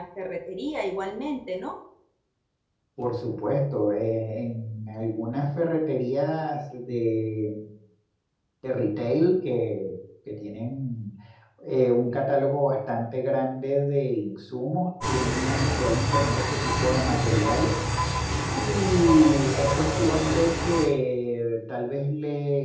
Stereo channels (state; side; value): identical; both; correlation 1.00